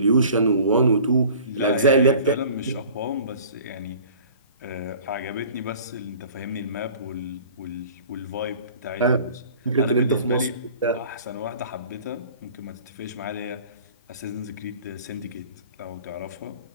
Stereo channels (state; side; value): inverted; both; correlation -0.46